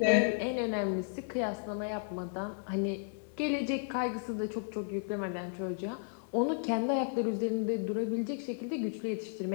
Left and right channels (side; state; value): right; silent; 55 dB below the other